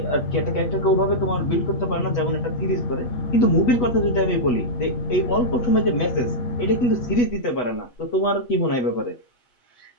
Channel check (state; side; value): late; right; 8.2 ms